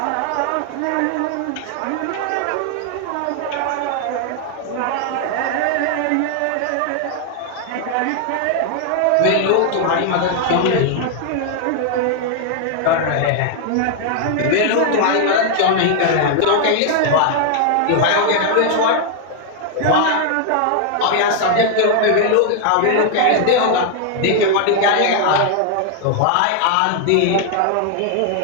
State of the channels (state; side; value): different; both; correlation 0.00